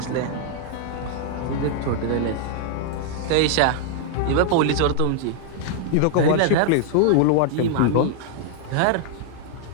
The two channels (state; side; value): different; both; correlation 0.00